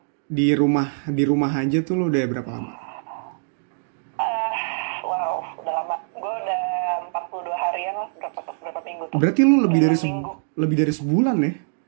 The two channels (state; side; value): silent; left; digital silence